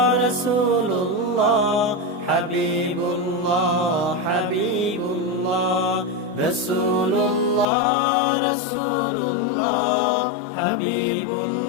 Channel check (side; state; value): right; drops out; at 7.7 s